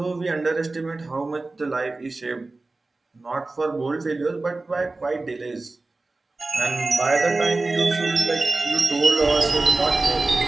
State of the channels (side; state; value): left; quieter; 3.3 dB